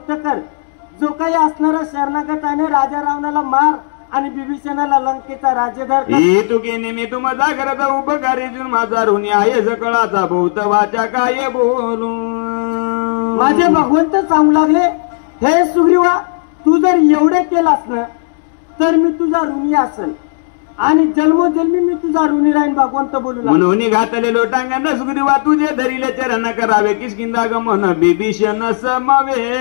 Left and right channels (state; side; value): silent; right; digital silence